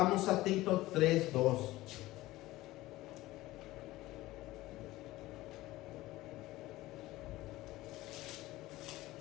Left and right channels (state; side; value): quieter; right; 17.7 dB